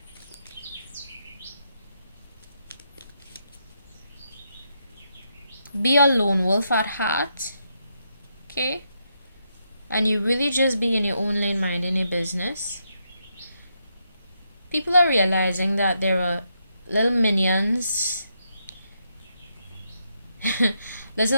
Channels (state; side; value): inverted; both; correlation -0.80